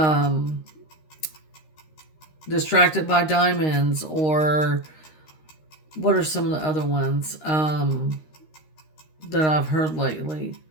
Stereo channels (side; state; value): right; late; 13 ms